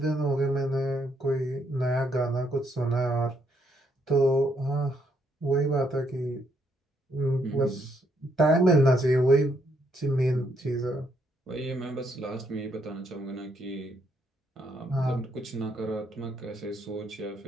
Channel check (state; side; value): normal; both; correlation 0.73